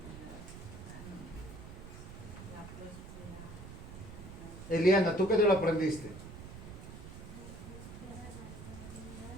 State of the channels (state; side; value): noise; right; rumble, 12 dB below the sound